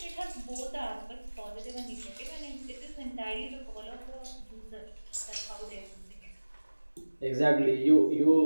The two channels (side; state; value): both; inverted; correlation -1.00